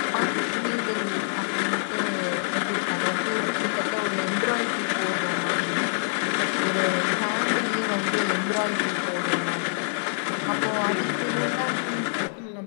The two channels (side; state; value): right; silent; digital silence